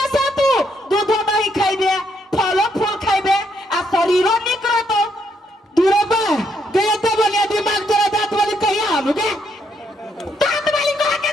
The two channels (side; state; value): both; normal; correlation 0.74